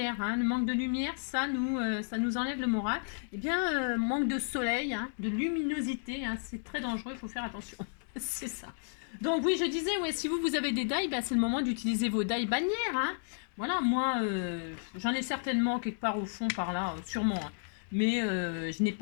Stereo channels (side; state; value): right; silent; digital silence